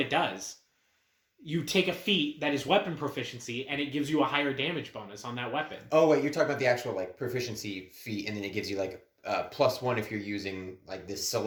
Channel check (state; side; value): identical; both; correlation 1.00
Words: does. You take a feat that is weapon proficiency, and it gives you a higher damage bonus on that weapon. Oh wait, you're talking about the actual like proficiency feat, and then it gives you like +1 if you're using like this